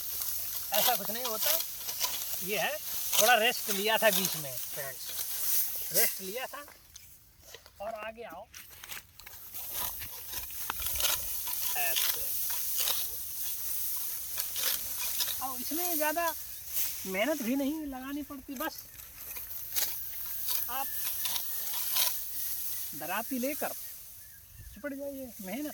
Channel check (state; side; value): identical; both; correlation 1.00